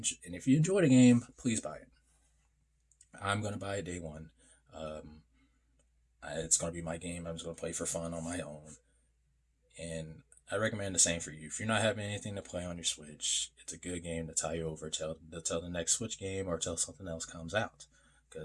if you enjoy the game, please buy it. I'm going to buy it day one. Um, it's going to be my game. I'm just going to play for fun on my own. And I recommend the same for you. If you're not having anything to play on your Switch, it's a good game to tie you over till the next Switch game or till something else comes out.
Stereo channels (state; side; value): identical; both; correlation 1.00